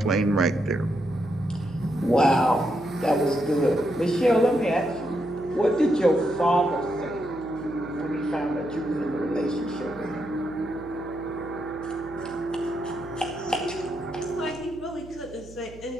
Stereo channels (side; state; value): right; noise; hum, 19 dB below the sound